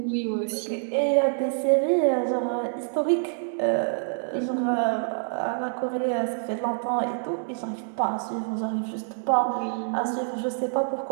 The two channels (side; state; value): left; silent; 61 dB below the other